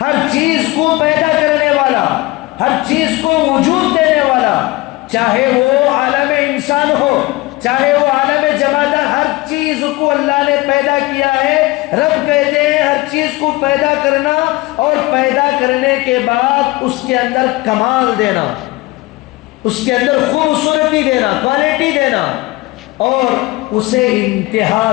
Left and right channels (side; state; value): right; quieter; 21.0 dB